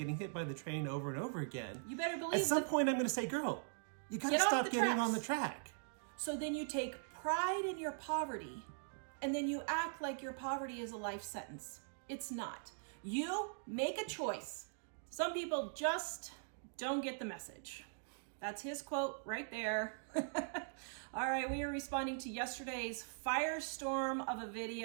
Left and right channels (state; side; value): silent; left; digital silence